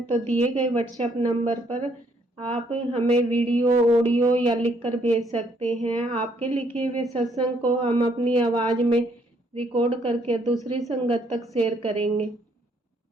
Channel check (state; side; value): normal; both; correlation 0.69